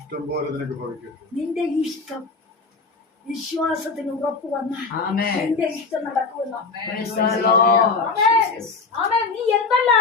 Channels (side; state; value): right; quieter; 4.3 dB